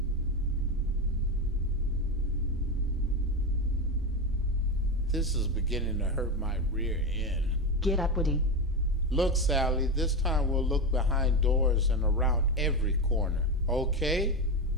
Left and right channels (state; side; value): normal; both; correlation 0.15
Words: This is beginning to hurt my rear end. Get up, Woody. Look, Sally, this time we'll look behind doors and around every corner. Okay?